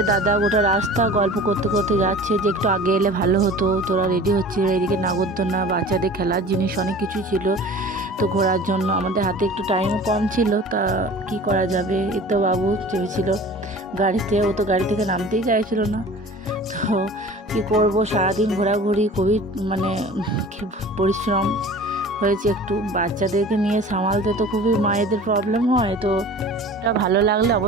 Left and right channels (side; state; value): both; normal; correlation 0.42